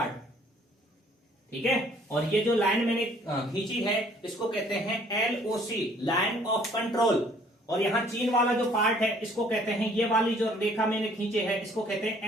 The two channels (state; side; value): normal; both; correlation 0.59